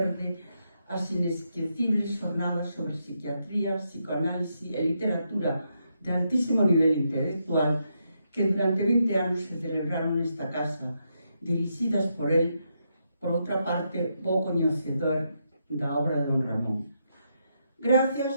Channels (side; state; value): both; inverted; correlation -0.81